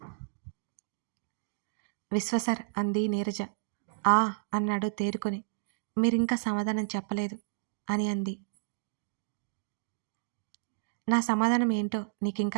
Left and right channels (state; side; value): silent; left; digital silence